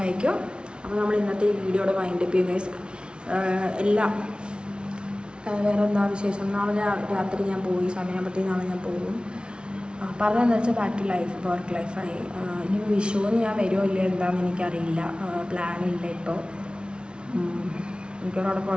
അപ്പോൾ നമ്മൾ ഇന്നത്തെ ഈ വീഡിയോയുടെ വൈൻഡപ്പ് ചെയ്യും ഗൈസ്. എല്ലാം വേറെ എന്താ വിശേഷം? നാളെ രാത്രി ഞാൻ പോയി, സമയമാകുമ്പോഴത്തേക്ക് നാളെ ഞാൻ പോകും. പറഞ്ഞതെന്ന് വെച്ചാൽ ബാക്ക് ടു ലൈഫ്, വർക്ക് ലൈഫായി. ഇനിയിപ്പോൾ വിഷുവിന് ഞാൻ വരുമോ ഇല്ല എന്താണെന്ന് എനിക്കറിയില്ല. പ്ലാനില്ല ഇപ്പോൾ. എനിക്കവിടെ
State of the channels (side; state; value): left; late; 0.056 ms